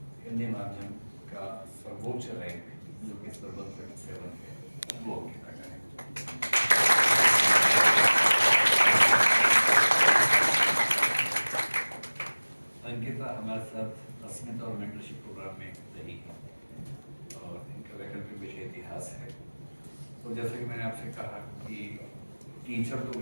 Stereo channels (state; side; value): inverted; both; correlation -1.00